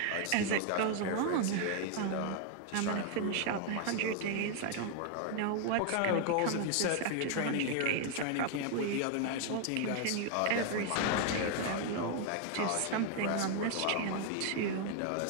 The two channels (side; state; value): both; different; correlation 0.00